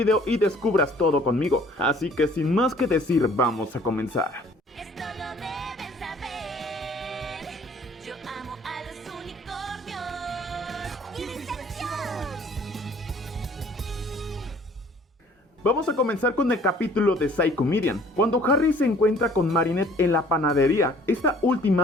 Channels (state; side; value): normal; both; correlation 0.55